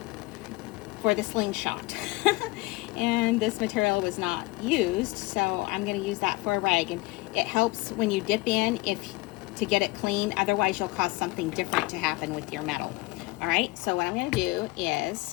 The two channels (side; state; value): right; quieter; 21.8 dB